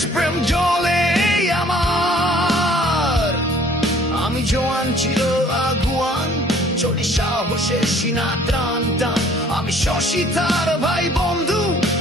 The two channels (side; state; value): both; normal; correlation 0.56